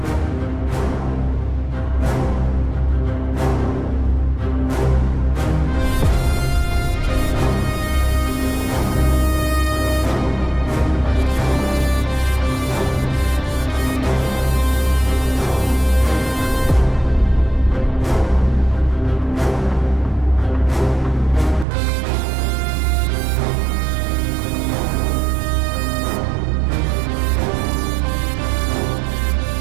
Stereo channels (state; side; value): drops out; left; at 21.7 s